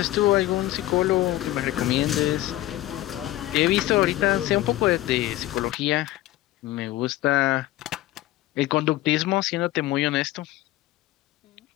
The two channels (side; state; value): right; quieter; 16.0 dB